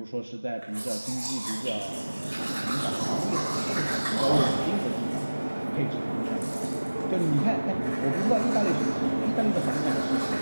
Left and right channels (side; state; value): both; inverted; correlation -1.00